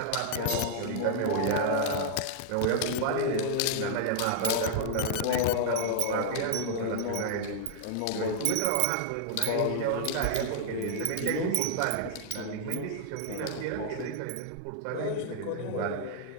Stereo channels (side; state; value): both; different; correlation -0.01